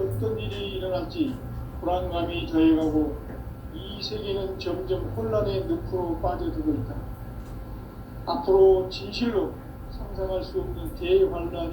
일이 일어날지 불안감이 더해가고 이 세계는 점점 혼란의 늪으로 빠져들고 있다. 앞으로 진실로 상상할 수 없는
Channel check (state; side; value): identical; both; correlation 1.00